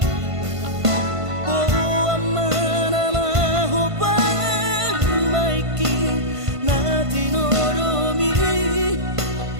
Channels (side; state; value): left; late; 1.5 ms